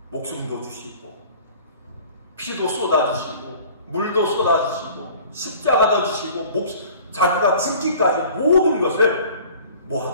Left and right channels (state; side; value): inverted; both; correlation -0.48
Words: 목숨도 주시고 피도 쏟아주시고 물도 쏟아주시고 십자가도 주시고 자기가 죽기까지 모든 것을 뭐